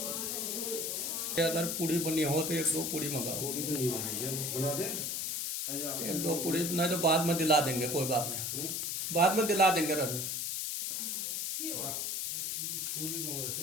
अगर पूड़ी बनी हो तो 1-2 पूड़ी मंगाओ। पूरी तो नहीं बनाई है, बना दे। 1-2 पूड़ी नहीं तो बाद में दिला देंगे, कोई बात नहीं, बाद में दिला देंगे। रख पूरी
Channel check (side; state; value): left; noise; hiss, 1 dB below the sound